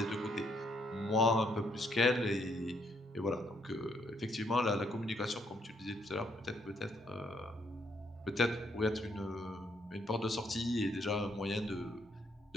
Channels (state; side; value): normal; both; correlation 0.72